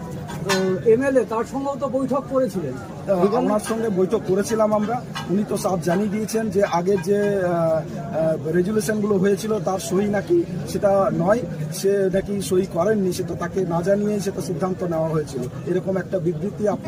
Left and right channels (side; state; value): both; identical; correlation 1.00